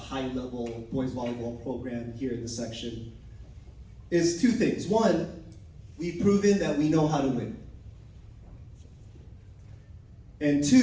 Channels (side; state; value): both; identical; correlation 1.00